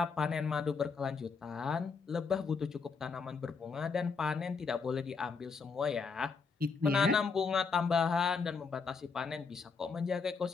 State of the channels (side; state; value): right; quieter; 5.1 dB